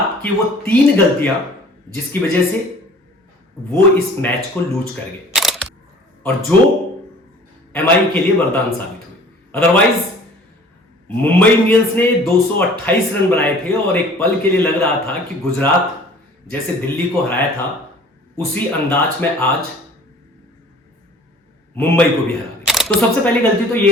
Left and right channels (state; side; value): normal; both; correlation 0.49